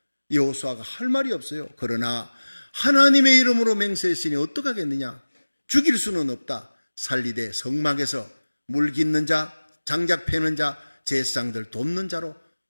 여호수아가 할 말이 없어요. 그러나 하나님의 이름으로 맹세했으니 어떡하겠느냐, 죽일 수는 없다. 살리되 성막에서 물 깃는 자, 장작 패는 자, 제사장들 돕는 자로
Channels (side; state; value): both; inverted; correlation -1.00